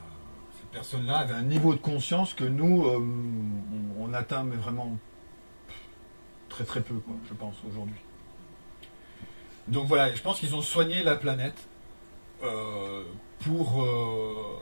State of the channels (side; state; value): both; inverted; correlation -1.00